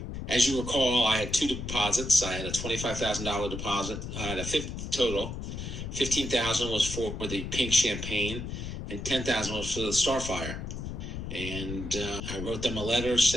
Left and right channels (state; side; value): noise; left; rumble, 6 dB below the sound